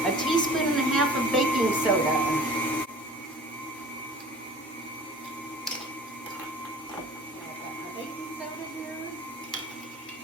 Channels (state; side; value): normal; both; correlation 0.44